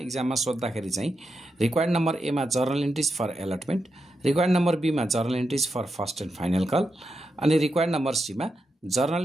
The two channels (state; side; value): normal; both; correlation 0.86